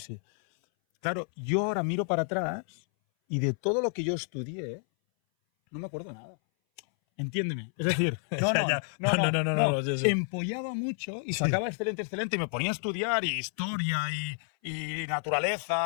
Claro, yo ahora miro para atrás y de todo lo que yo estudié, no me acuerdo nada. Entiéndeme. Es decir, no. Sí. Empollaba mucho y sacaba excelente y me ponía a estudiar y historia y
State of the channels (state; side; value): silent; right; 58 dB below the other